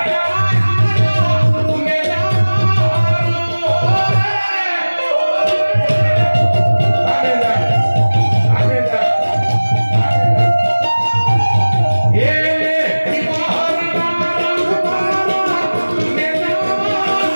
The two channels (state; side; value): inverted; both; correlation -1.00